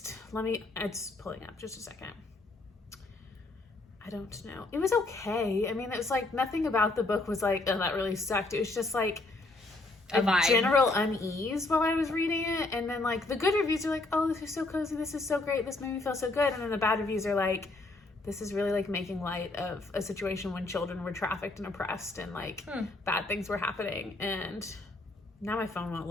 pulling up just a second. I don't know. It was okay. I mean, it was like nothing about the book was like, oh, that really sucked. It was just like a general unease while I was reading it. And then like the good reviews are like, oh, this is so cozy. This is so great. This made me feel so good. And then the bad reviews are like, this is really like making light of a situation when children were trafficked and oppressed and like bad things were happening. And now my phone won't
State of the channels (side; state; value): right; quieter; 3.1 dB